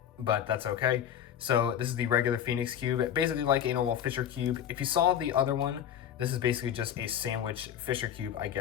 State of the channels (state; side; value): quieter; right; 9.7 dB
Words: but that's okay. So this is the regular Phoenix cube, basically like a normal Fisher cube. If you saw the other one, this is basically just a sandwich Fisher cube, I